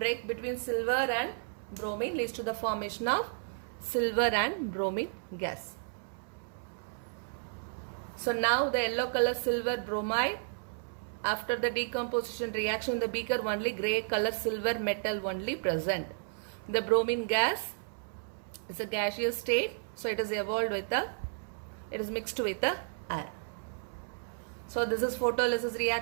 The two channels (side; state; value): left; silent; 56 dB below the other